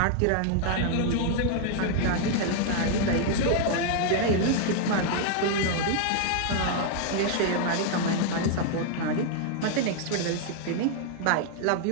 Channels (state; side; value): different; both; correlation 0.00